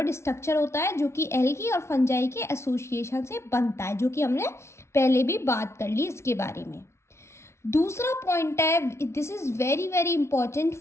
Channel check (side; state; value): right; late; 0.13 ms